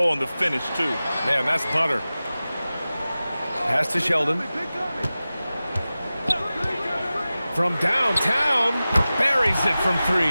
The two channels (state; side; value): inverted; both; correlation -0.96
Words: on the finish, too. Man, that's butter. Pass to Sheldon. From downtown, buries it from